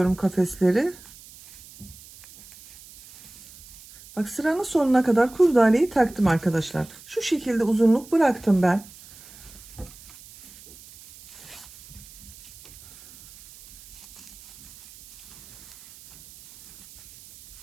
kafesleri. Bak sıranın sonuna kadar kurdaleyi taktım arkadaşlar. Şu şekilde uzunluk bıraktım ben.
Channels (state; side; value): noise; right; hiss, 20 dB below the sound